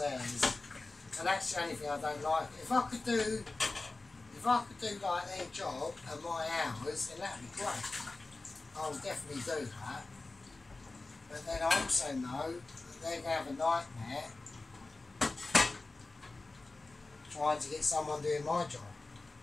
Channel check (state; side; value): quieter; right; 3.3 dB